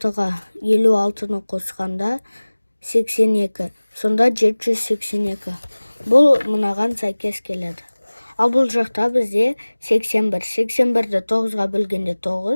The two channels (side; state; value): both; inverted; correlation -1.00